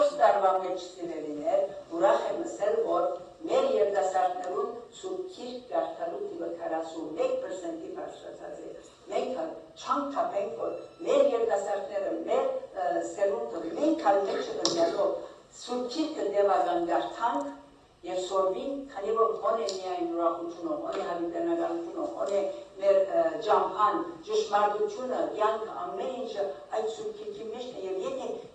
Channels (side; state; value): both; identical; correlation 1.00